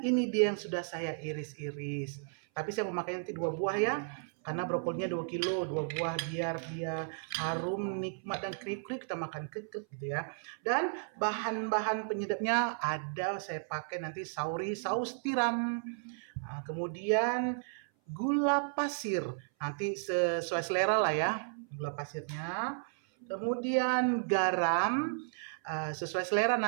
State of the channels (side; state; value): left; silent; 55 dB below the other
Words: ini dia yang sudah saya iris-iris. Tapi saya memakai nanti 2 buah ya, karena brokolinya 2 kilo, 2 buah biar dia harum, nikmat dan kriuk-kriuk kita makan kekek gitu ya. Dan bahan-bahan penyedapnya ada, saya pakai nanti saus tiram. Nah, kemudian gula pasir, nanti sesuai selera lah ya gula pasirnya. Kemudian garam sesuai selera,